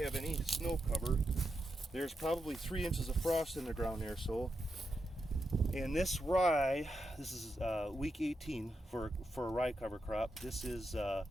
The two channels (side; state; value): both; normal; correlation 0.86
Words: any snow cover. There's probably 3 inches of frost in the ground there. So, and this rye, this is week 18 for a rye cover crop. This is